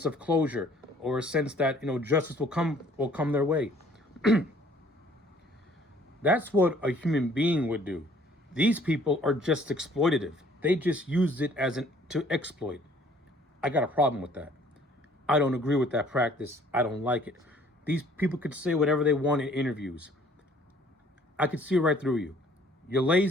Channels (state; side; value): normal; both; correlation 0.57